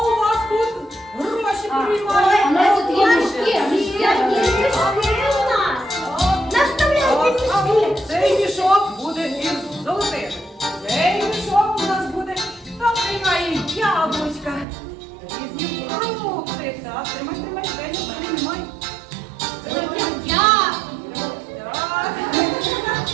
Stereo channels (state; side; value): drops out; left; at 14.7 s